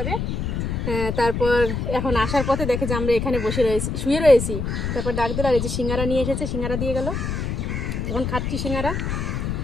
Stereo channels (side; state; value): left; noise; rumble, 2 dB below the sound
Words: তারপর এখন আসার পথে দেখে যে আমরা এখানে বসে রয়েছি, শুয়ে রয়েছি। তারপর ডাক দিল, আর এই যে সিঙ্গারা নিয়ে এসেছে, সিঙ্গারা দিয়ে গেল, এখন খাচ্ছি সিঙ্গারা।